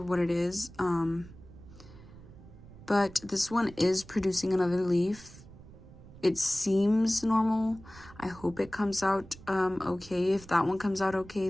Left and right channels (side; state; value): right; noise; rumble, 19 dB below the sound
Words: it is, but this one is producing another leaf. It seems normal. I hope it comes out okay. If that one comes out okay,